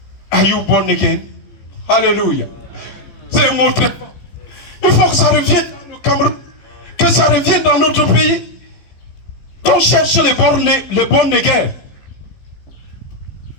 are you born again? Alléluia. C'est un mot très fort. Il faut que ça revienne dans le Cameroun, que ça revienne dans notre pays. Qu'on cherche les born again.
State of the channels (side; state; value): right; late; 14 ms